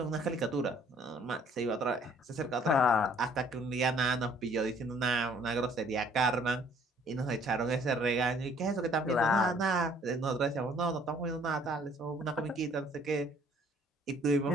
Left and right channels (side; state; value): both; normal; correlation 0.59